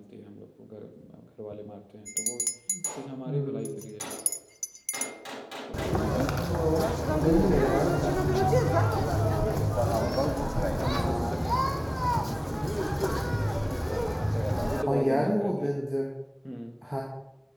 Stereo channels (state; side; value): identical; both; correlation 1.00